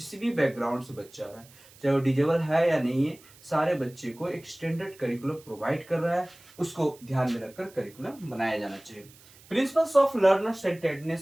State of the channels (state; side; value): noise; right; hiss, 24 dB below the sound